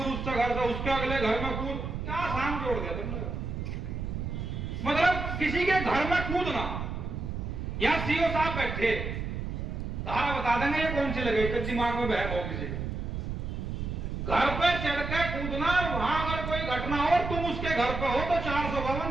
उसके घर से उसके अगले घर में कूद, क्या शाम जोड़ दिया तुमने। मतलब किसी के घर में कूदना, या सीओ साहब बैठे तारा बता देंगे ये कौन सी लगे, तो दिमाग में बहम हो किसी घर पे चढ़ के कूदना, वहां अगर कोई घटना हो तुम उसके घर पे हो तो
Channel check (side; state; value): right; noise; rumble, 4 dB below the sound